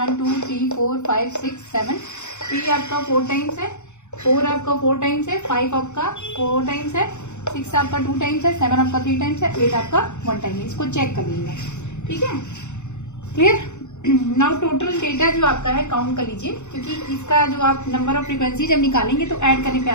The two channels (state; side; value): late; right; 0.83 ms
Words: 2 3 4 5 6 7, 3 आपका 4 टाइम्स है, 4 आपका 4 टाइम्स है, 5 आपका 4 टाइम्स है, 6 आपका 2 टाइम्स है, 7 आपका 3 टाइम्स है, 8 आपका 1 टाइम है। इसको चेक कर लीजिएगा, ठीक है, क्लियर। नाउ टोटल डेटा जो आपका है काउंट कर लीजिए, क्योंकि इसका जो आप नंबर ऑफ फ्रीक्वेंसी जब निकालेंगे तो ऐड करने पे